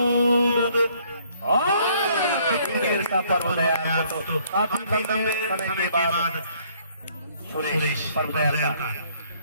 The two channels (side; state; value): both; inverted; correlation -0.63